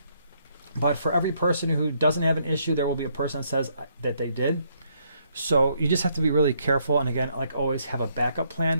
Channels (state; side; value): inverted; both; correlation -0.71